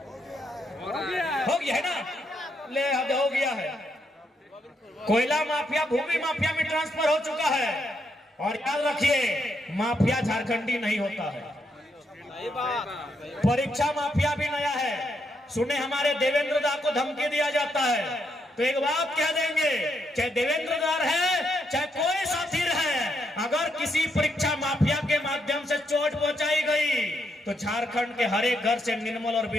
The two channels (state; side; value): normal; both; correlation 0.78